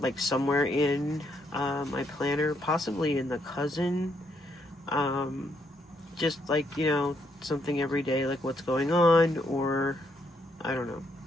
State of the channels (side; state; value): both; normal; correlation 0.75